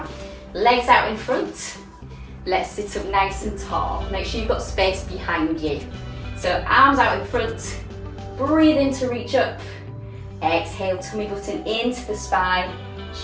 Legs out in front. Let's sit up nice and tall. Make sure you've got space behind you. So arms out in front. Breathe in to reach up. Exhale, tummy button into the spine.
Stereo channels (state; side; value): identical; both; correlation 1.00